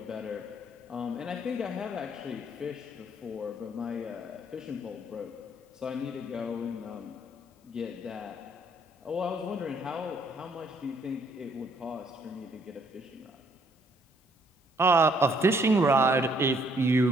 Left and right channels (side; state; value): both; normal; correlation 0.66